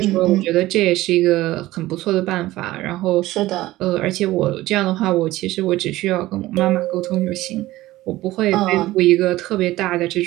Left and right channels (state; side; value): quieter; left; 16.9 dB